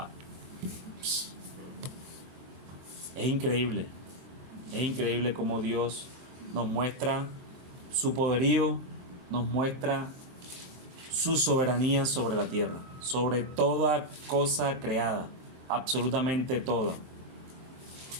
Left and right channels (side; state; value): left; late; 23 ms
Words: Es increíble cómo Dios nos muestra su poderío, nos muestra su soberanía sobre la tierra, sobre toda cosa creada, absolutamente toda.